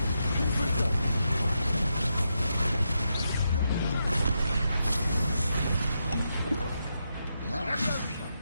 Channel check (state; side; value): inverted; both; correlation -0.84